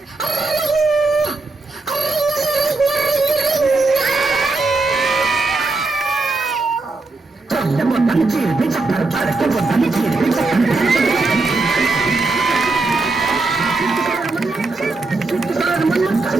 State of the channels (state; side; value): quieter; left; 3.4 dB